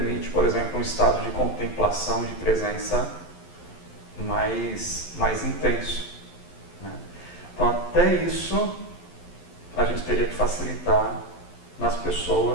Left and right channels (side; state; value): right; late; 11 ms